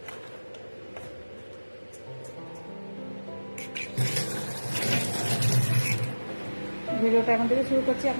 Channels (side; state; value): both; inverted; correlation -1.00